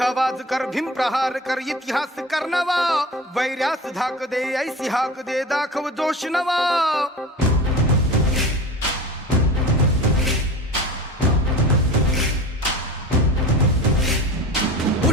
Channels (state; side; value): normal; both; correlation 0.34